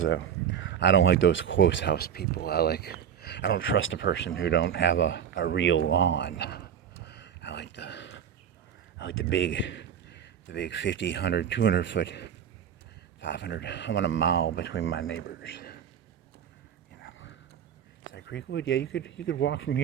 I don't like those close house people. I don't trust a person who don't have a real lawn. I like the big 50, 100, 200 foot, 500. I want a mile between my neighbors. that Creekwood? Yeah, you could walk from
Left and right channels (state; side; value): quieter; left; 8.6 dB